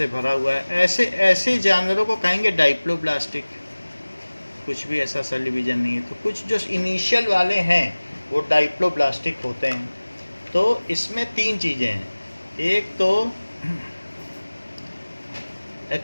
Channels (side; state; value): both; inverted; correlation -1.00